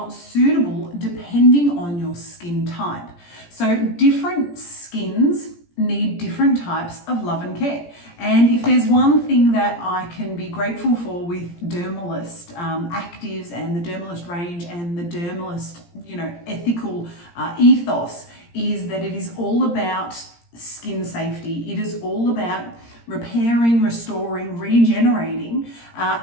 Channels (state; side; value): late; right; 17 ms